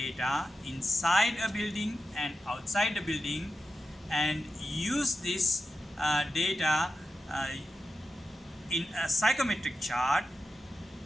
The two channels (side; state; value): both; normal; correlation 0.90